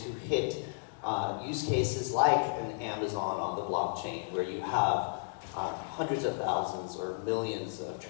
hit use cases like an Amazon on the blockchain, where you have hundreds of thousands or millions of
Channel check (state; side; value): silent; right; digital silence